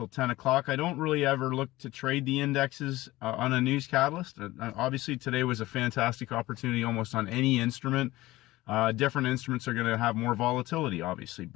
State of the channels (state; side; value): quieter; right; 18.1 dB